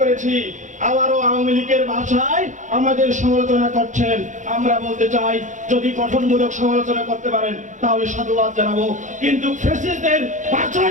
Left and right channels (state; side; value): late; left; 0.36 ms